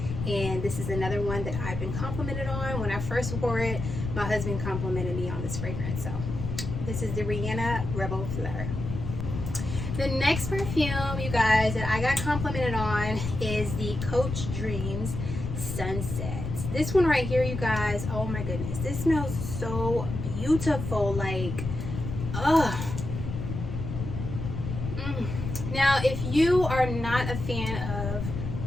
And this is another one that I've been complimented on. When I first wore it, my husband complimented me on this fragrance. So this is the Rihanna Rebl Fleur. The next perfume, you guys, that I got complimented on is the Coach Dreams Sunset. This one right here, you guys, oh my goodness, this smells so beautiful. Like, ugh. Now, if you are not a fan of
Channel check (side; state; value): left; noise; rumble, 5 dB below the sound